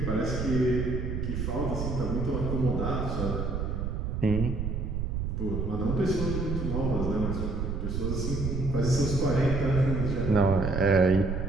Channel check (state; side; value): noise; right; rumble, 2 dB below the sound